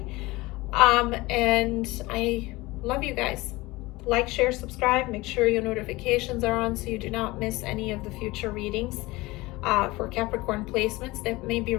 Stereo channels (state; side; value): quieter; right; 20.9 dB